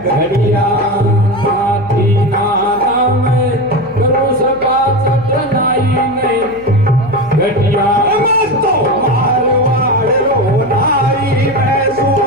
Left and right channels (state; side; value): noise; left; hum, 20 dB below the sound